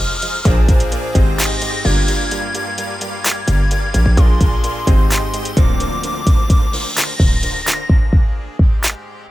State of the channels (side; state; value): both; normal; correlation 0.94